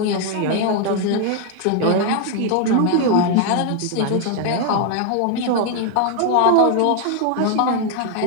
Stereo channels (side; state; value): both; different; correlation 0.01